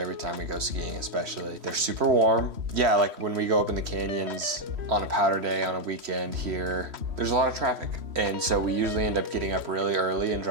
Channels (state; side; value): late; left; 3.1 ms